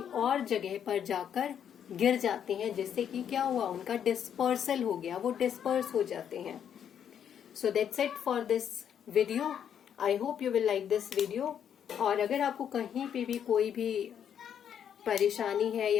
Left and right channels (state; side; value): quieter; right; 8.8 dB